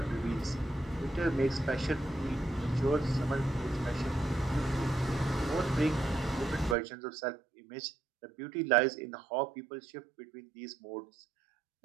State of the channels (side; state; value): left; drops out; at 6.8 s